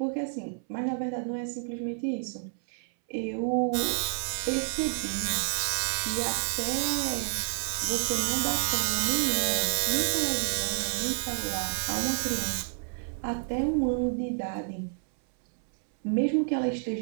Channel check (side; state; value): left; silent; 58 dB below the other